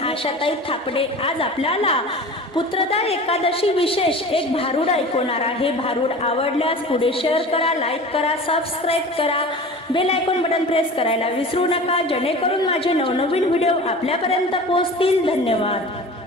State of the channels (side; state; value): both; normal; correlation 0.37